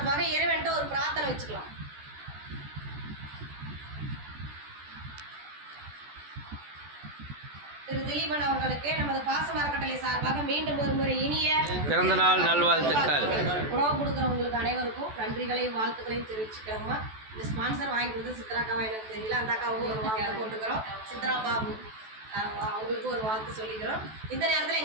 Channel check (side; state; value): left; late; 14 ms